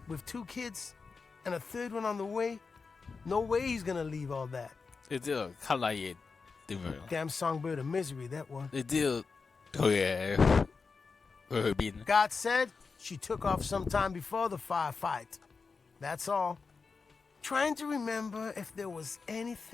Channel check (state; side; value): quieter; right; 4.7 dB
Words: with 2 kids, and a 3rd one on the way. No way he's gonna leave all that. 你知道卡拉嘢點樣？ Damn songbird of misery, that one. 你知道佢去邊？ God said she took off sometime before the firefight. That's all. Trying to remember if there was